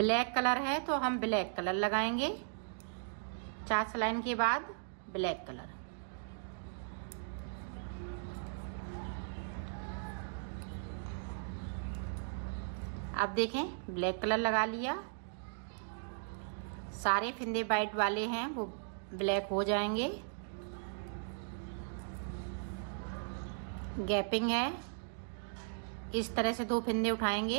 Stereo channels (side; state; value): left; silent; digital silence